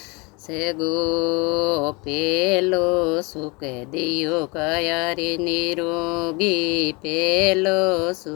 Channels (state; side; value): quieter; right; 27.4 dB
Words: से गो पेलो सुख दियो कयारी निरोगी पेलो